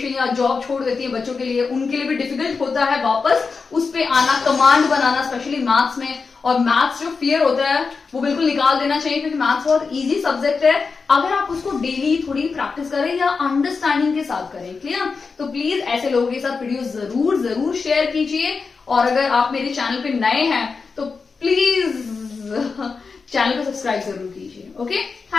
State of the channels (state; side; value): quieter; right; 4.8 dB